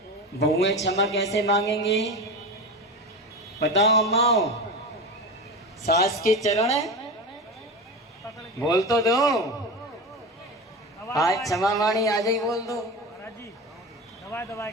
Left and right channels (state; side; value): normal; both; correlation 0.25